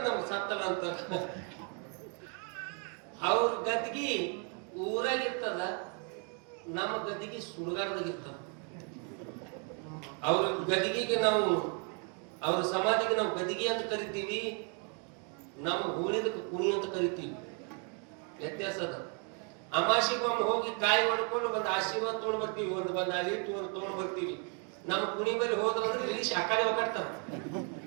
ನಮ್ಗೆ ಸತ್ತಲ್ಲ ಅಂತಾರ. ಅವ್ರ ಗದ್ಗಿ ಊರಾಗಿರ್ತದ, ನಮ್ಮ ಗದ್ದಿಗೆ ಸುಡುಗಾಡದಾಗಿರ್ತದ. ಅವ್ರ ಗದಿಗೆಗೆ ನಾವು, ಅವ್ರ ಸಮಾಧಿಗೆ ನಾವು ಗದಿಗೆ ಅಂತ ಕರಿತೀವಿ, ನಮ್ಮ ಹೂಳಿದಕ್ಕೆ ಕುಣಿ ಅಂತ ಕರಿತೀವಿ. ವ್ಯತ್ಯಾಸ ಅದ. ಅಮಾಸಿಗೊಮ್ಮೆ ಹೋಗಿ ಕಾಯಿ ಹೊಡ್ಕೊಂಡು ಬಂದು ಆಶೀರ್ವಾದ ತೊಗೊಂಡ್ ಬರ್ತೀವಿ, ಬಂದು ಅಲಿಟ್ಟು ತೊಗೊಂಡ್ ಬರ್ತೀವಿ. ನಮ್ಮ ಕುಣಿ ಬಳಿ ಹೋದ್ರಂದ್ರೆ ಇಳಿಸಿ ಆ ಕಡೆ ಒಕ್ಕಾಡ್ತಾರ,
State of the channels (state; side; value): quieter; left; 38.7 dB